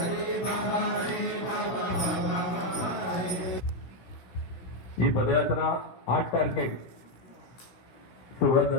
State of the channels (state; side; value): late; right; 16 ms